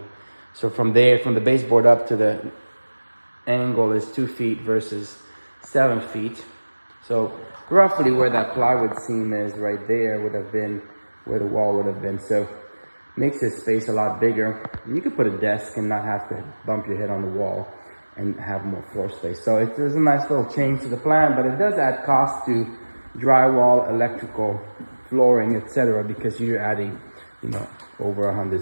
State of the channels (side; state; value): both; inverted; correlation -1.00